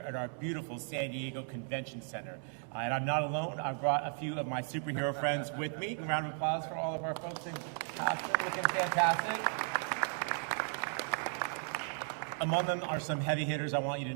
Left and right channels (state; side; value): silent; left; 54 dB below the other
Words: at our beautiful San Diego Convention Center. And I'm not alone. I've brought a few of my superhero friends with me. A round of applause for all of our folks in costume, looking fantastic. Among them are some heavy hitters I want you to